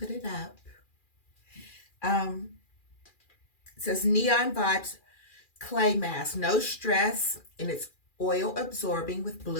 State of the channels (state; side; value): late; right; 2.4 ms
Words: it up. It says Neon Vibes Clay Mask. No stress, and it's oil absorbing with